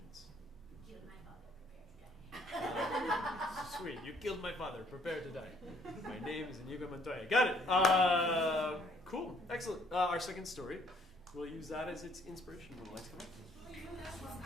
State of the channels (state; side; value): normal; both; correlation 0.63